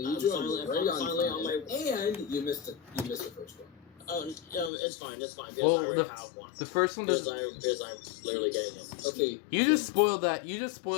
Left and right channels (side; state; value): right; drops out; at 4.7 s